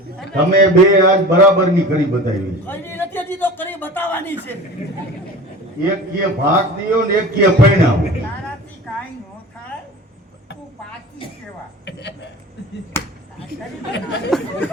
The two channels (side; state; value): both; normal; correlation 0.37